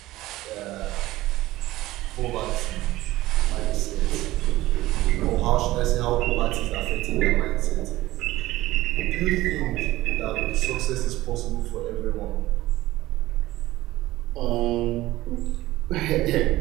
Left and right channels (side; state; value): left; quieter; 17.0 dB